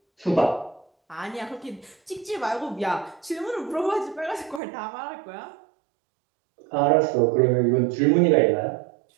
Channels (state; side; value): drops out; left; at 4.6 s